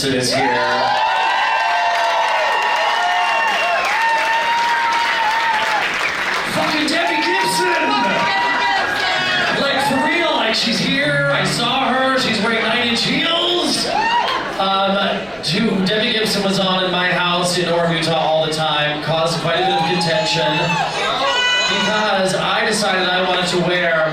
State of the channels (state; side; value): identical; both; correlation 1.00